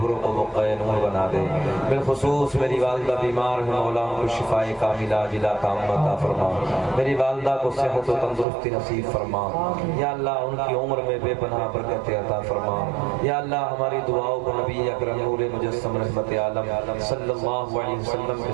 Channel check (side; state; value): left; drops out; at 8.5 s